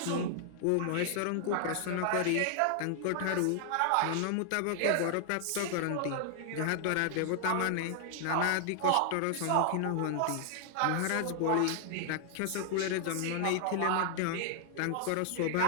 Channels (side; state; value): both; different; correlation 0.00